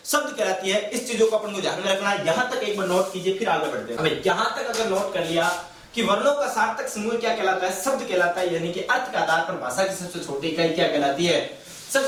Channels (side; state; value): both; identical; correlation 1.00